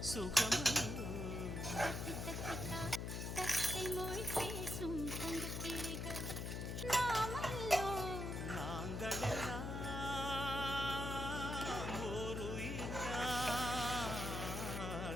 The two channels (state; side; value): noise; left; hum, 3 dB below the sound